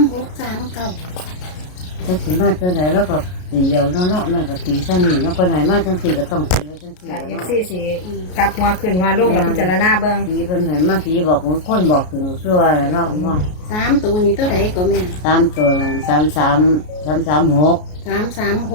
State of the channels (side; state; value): right; late; 33 ms